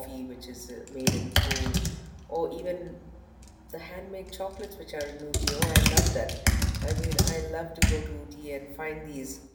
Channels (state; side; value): identical; both; correlation 1.00